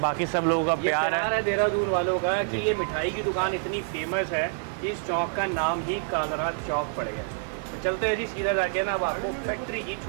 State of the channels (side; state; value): left; silent; 60 dB below the other